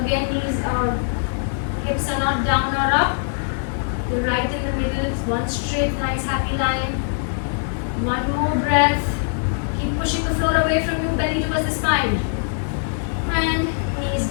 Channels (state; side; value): silent; right; 59 dB below the other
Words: knees are, hips are not down or up. The right in the middle is one straight, nice happy line. One more breath. Keep pushing the floor away from you, belly towards the spine. And knees